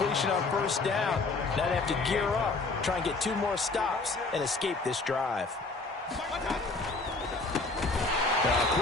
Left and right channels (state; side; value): quieter; right; 3.6 dB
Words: on first down. Now they have to gear up, try and get 2 more stops, and escape this drive. A